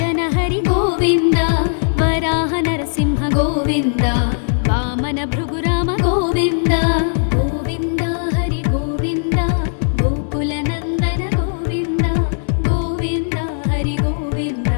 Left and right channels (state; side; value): silent; right; 64 dB below the other